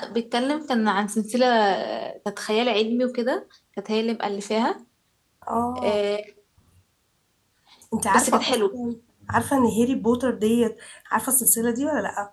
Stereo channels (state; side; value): identical; both; correlation 1.00